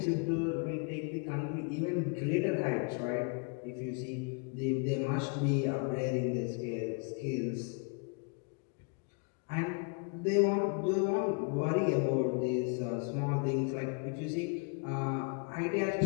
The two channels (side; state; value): right; quieter; 35.8 dB